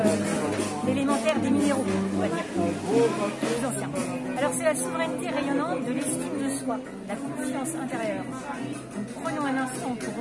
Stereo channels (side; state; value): both; identical; correlation 1.00